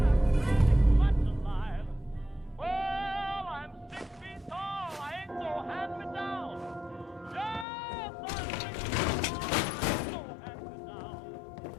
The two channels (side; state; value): right; drops out; at 7.7 s